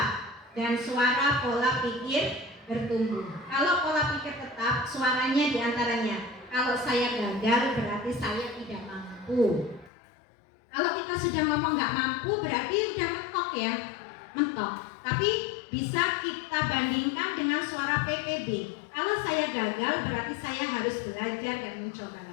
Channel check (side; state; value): right; drops out; at 9.9 s